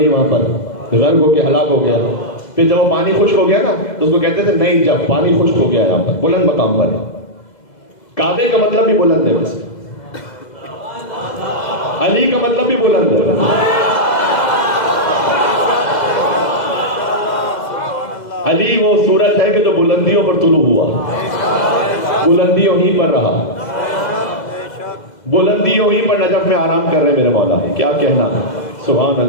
وہاں پر غرق ہو کے ہلاک ہو گیا۔ پھر جب وہ پانی خشک ہو گیا نا تو اس کو کہتے تھے نئی جب، پانی خشک ہو گیا یہاں پر، بلند مقام پر۔ کعبے کا مطلب بھی بلند ہے، ویسے علی کا مطلب بھی بلند ہے۔ علی وہ سورج ہے کہ جو بلندیوں پر طلوع ہوا، بلندیوں ہی پر رہا، بلندیوں ہی پر نجف میں آرام کر رہے میرے مولا، کیا کہنا ہے، سبحان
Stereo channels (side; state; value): right; late; 2.0 ms